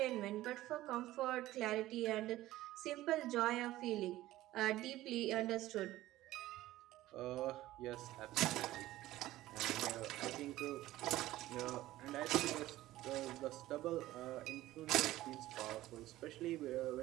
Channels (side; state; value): left; quieter; 15.8 dB